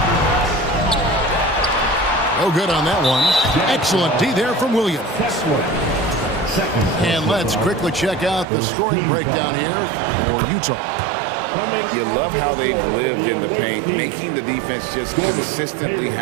No good on that one. Excellent D there from Williams. And let's quickly check out the scoring breakdown here for Utah. You love how they've lived in the paint, making the defense just consistently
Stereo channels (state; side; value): drops out; left; at 8.5 s